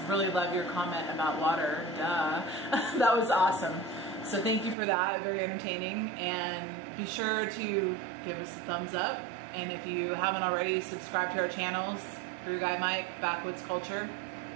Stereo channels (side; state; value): left; drops out; at 4.8 s